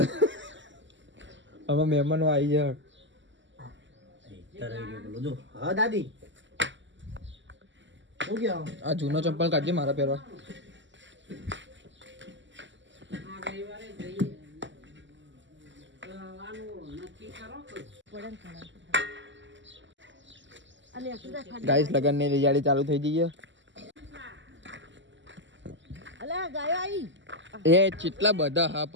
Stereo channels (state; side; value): late; left; 0.54 ms